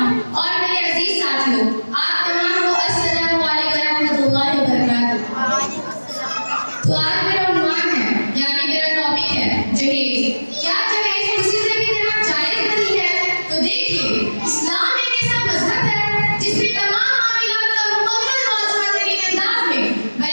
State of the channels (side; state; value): both; inverted; correlation -1.00